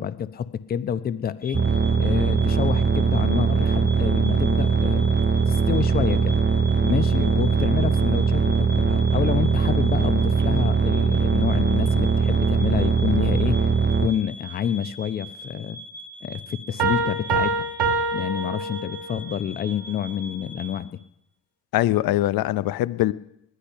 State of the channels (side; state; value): both; normal; correlation 0.60